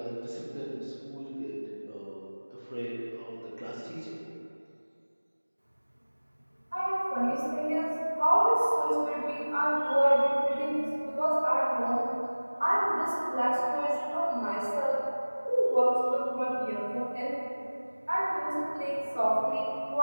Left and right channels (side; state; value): both; inverted; correlation -1.00